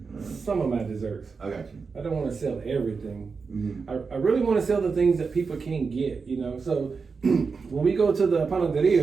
Some of my desserts. I got you. I don't want to sell everything. Mm-hmm. I really want to sell the things that people can't get, you know. So when we go to the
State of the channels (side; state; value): left; quieter; 5.0 dB